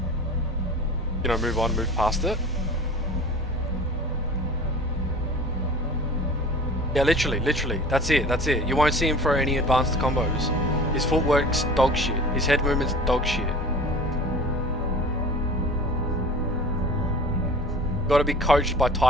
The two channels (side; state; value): both; normal; correlation 0.41